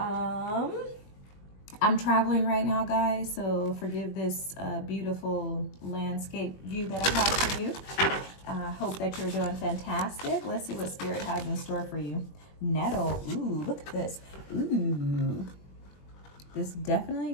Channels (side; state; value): right; late; 21 ms